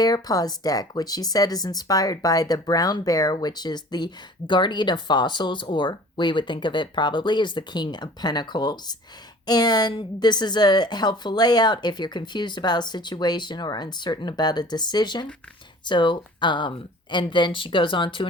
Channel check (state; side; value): normal; both; correlation 0.46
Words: Paws deck, which she said is inspired by the brown bear, which is the guardian of fossils, or we would think of it probably as the king of pentacles. And this is a helpful layout if you're confused about a situation or uncertain about a decision. So, and then she goes on to